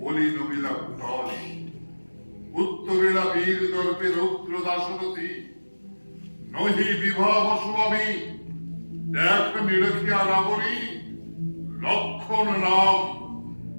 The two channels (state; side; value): inverted; both; correlation -1.00